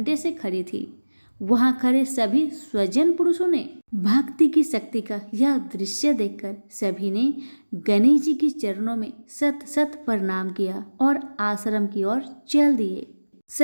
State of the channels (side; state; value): both; inverted; correlation -1.00